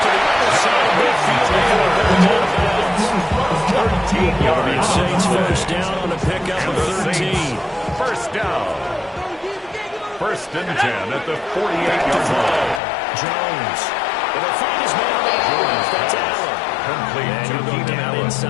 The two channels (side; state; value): right; drops out; at 12.8 s